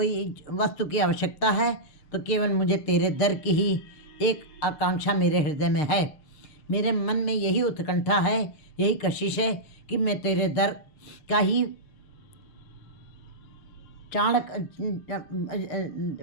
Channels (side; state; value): right; late; 6.4 ms